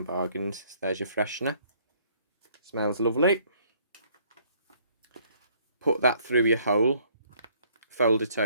Bargains. So there's your freshener. Smells lovely. Put that through your hole. Fold it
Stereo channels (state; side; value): inverted; both; correlation -0.63